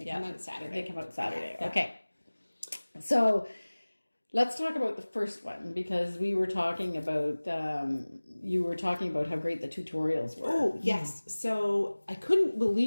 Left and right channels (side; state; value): both; inverted; correlation -1.00